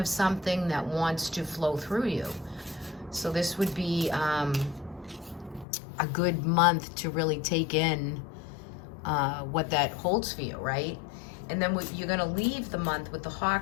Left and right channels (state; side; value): drops out; right; at 5.7 s